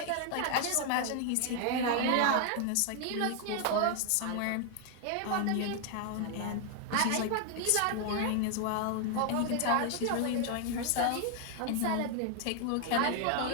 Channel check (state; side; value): different; both; correlation 0.00